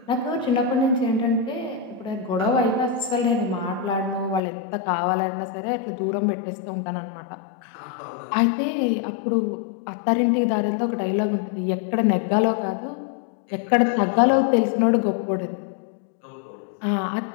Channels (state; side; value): drops out; right; at 4.4 s